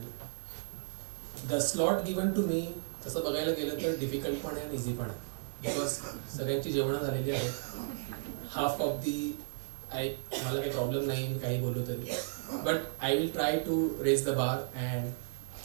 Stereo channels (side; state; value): left; silent; digital silence